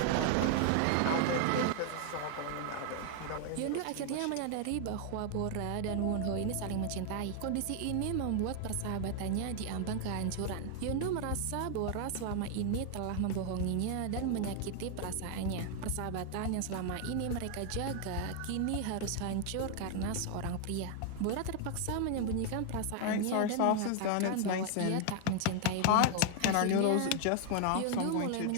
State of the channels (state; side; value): different; both; correlation 0.00